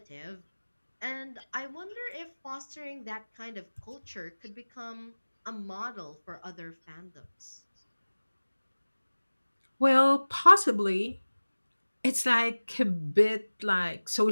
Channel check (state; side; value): inverted; both; correlation -1.00